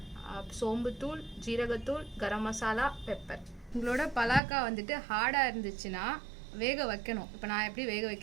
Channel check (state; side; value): drops out; left; at 4.4 s